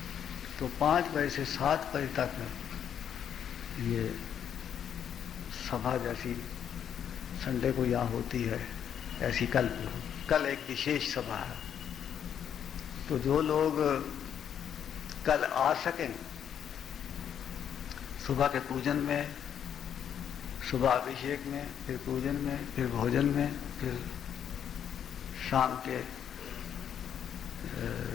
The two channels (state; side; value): quieter; right; 8.9 dB